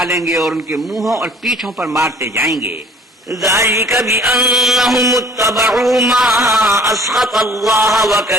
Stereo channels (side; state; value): both; normal; correlation 0.52